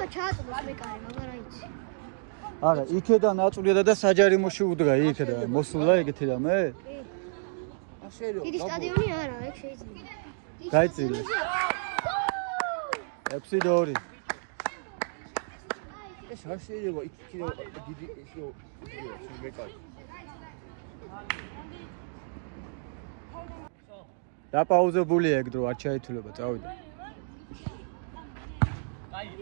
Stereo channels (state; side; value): silent; left; digital silence